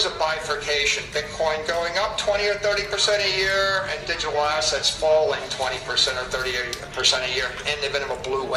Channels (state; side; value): identical; both; correlation 1.00